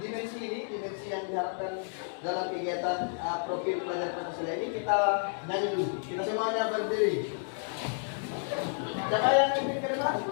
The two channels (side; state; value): right; silent; digital silence